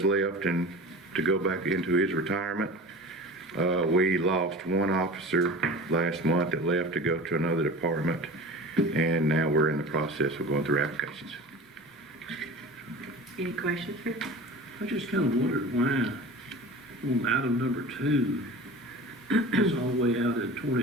left, and to go back into his retirement. We lost one officer last month that left to go to another department, and now we're in the process of going through applications. Any questions, Rick? I just kind of wondered why on item number 2, it's all the way out in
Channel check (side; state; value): both; normal; correlation 0.36